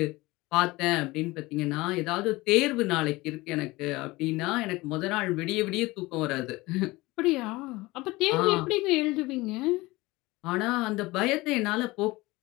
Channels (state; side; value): quieter; right; 21.0 dB